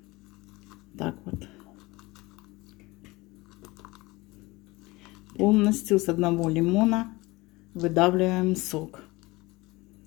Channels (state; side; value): quieter; right; 22.0 dB